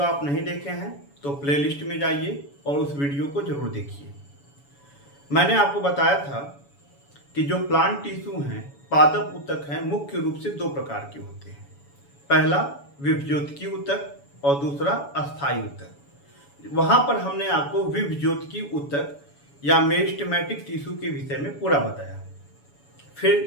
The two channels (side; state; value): right; late; 7.1 ms